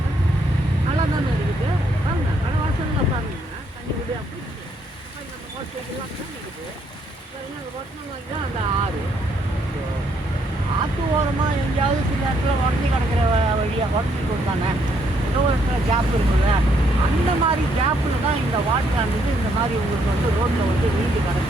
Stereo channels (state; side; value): normal; both; correlation 0.71